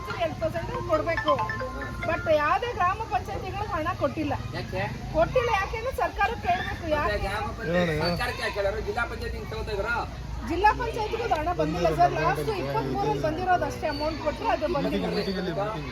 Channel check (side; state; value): both; identical; correlation 1.00